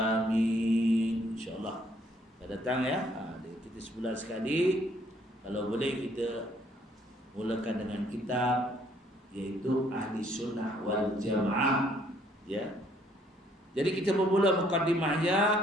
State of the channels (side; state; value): both; normal; correlation 0.65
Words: Insyaallah. Dah datang ya. Kita sebulan sekali. Kalau boleh kita mulakan dengan kitab, yaitu Ahli Sunnah wal Jamaah ya. Jadi kita bermula mukadimahnya